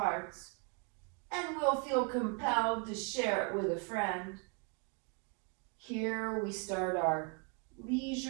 and we'll feel compelled to share it with a friend. Here we start our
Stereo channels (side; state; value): left; quieter; 34.3 dB